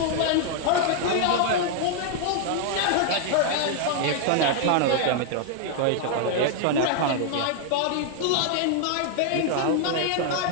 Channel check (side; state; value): both; different; correlation 0.00